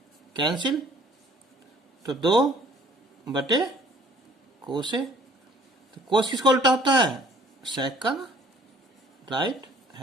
कैंसिल, तो 2 बटे कोस ए। तो कोस किसका उल्टा होता है, सेक का ना, राइट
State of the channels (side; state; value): both; normal; correlation 0.56